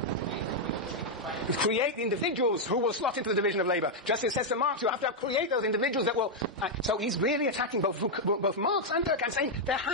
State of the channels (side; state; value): both; normal; correlation -0.02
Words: create the individuals who will slot into the division of labor. Just as it says to Marx, you have to create those individuals that will... so he's really attacking both Marx and Durkheim, saying there